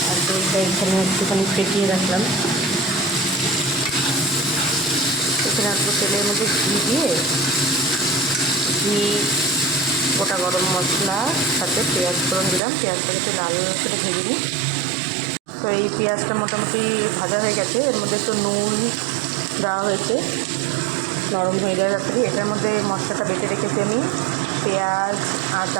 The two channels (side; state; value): left; drops out; at 12.6 s